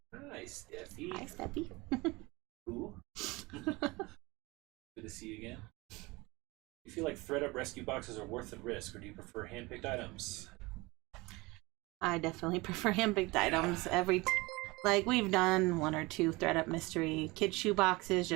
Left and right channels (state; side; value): quieter; left; 23.2 dB